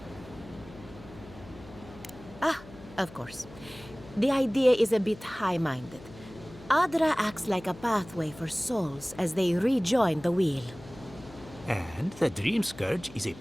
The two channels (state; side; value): noise; left; hum, 18 dB below the sound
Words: Of course. The idea is a bit high-minded. Adra acts like a pathway for souls as they rejoin the wheel. And the Dream Scourge is a